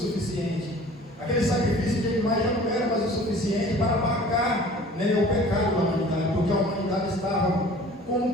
Aquele sacrifício de animais já não era mais o suficiente para apagar, né, o pecado da humanidade, porque a humanidade estava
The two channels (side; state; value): both; normal; correlation 0.47